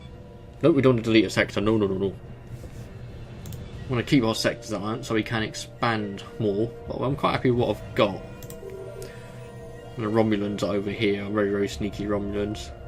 No, we don't want to delete a sector, no. We want to keep our sectors at that so we can expand more, but I'm quite happy with what I've got. And the Romulans are over here, very sneaky Romulans.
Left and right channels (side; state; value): both; identical; correlation 1.00